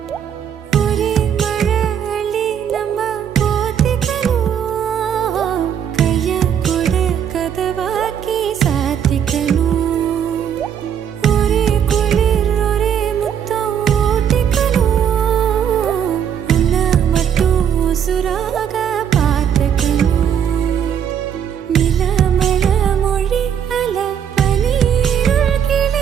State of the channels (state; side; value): quieter; left; 8.6 dB